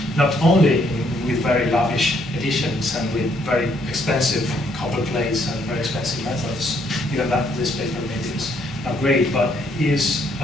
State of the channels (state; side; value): normal; both; correlation 0.70